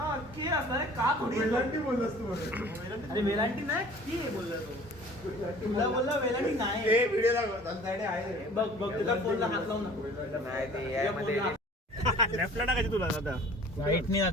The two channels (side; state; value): both; normal; correlation 0.48